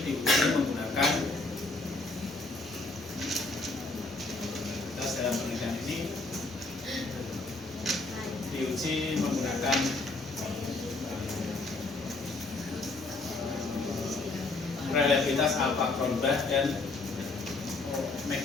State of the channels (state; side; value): quieter; right; 3.3 dB